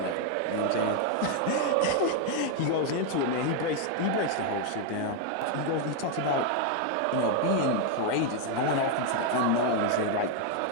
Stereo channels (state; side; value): different; both; correlation 0.00